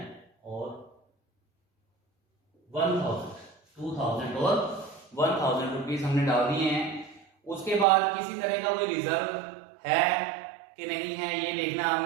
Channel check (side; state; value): left; drops out; at 7.9 s